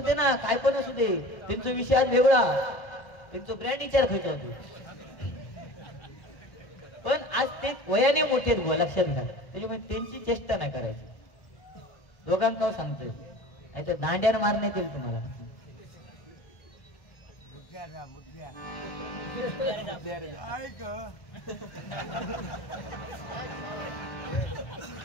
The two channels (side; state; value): right; late; 1.1 ms